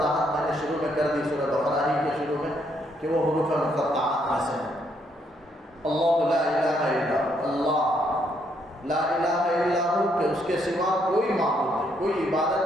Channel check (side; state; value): both; normal; correlation 0.73